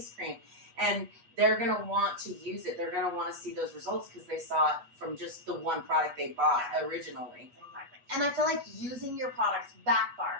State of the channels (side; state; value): left; late; 8.3 ms